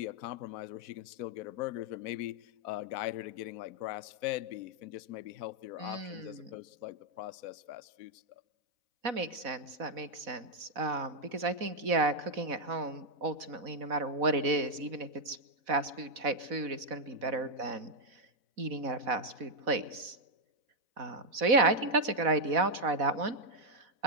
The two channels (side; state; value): left; late; 4.1 ms